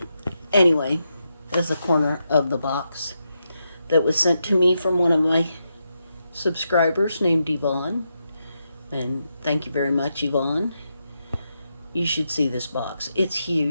Anyway, there's a corner of the box that was sent to me from one of my subscribers named Yvonne. And thank you very much, Yvonne. You should see this box. It's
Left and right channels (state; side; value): inverted; both; correlation -0.84